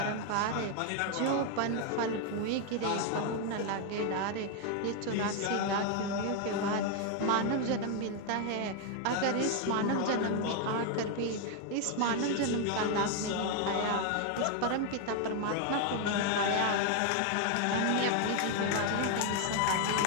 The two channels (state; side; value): different; both; correlation 0.01